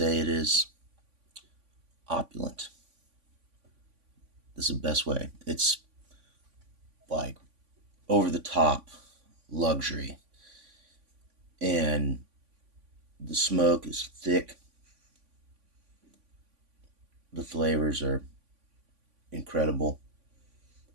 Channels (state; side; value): late; left; 3.5 ms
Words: it is opulent. This is the best way. It's like over the top luxury. And the smoke is thick. The flavors are incredible.